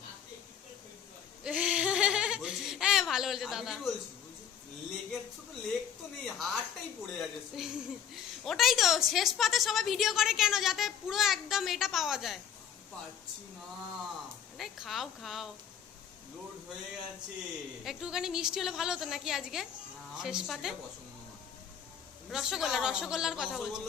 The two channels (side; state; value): right; quieter; 8.5 dB